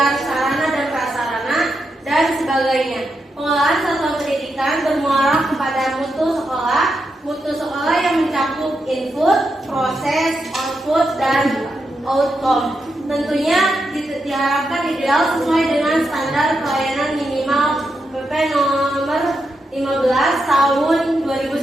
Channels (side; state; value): both; normal; correlation 0.85